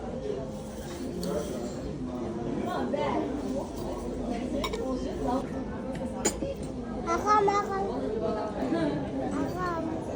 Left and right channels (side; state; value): both; identical; correlation 1.00